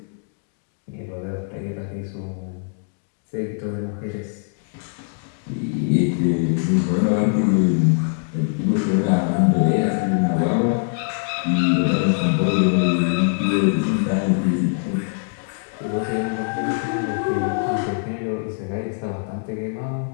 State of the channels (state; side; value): silent; right; digital silence